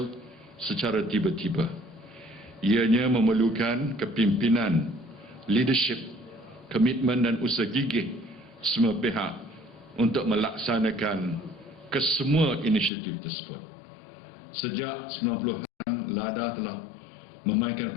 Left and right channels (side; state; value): right; drops out; at 12.9 s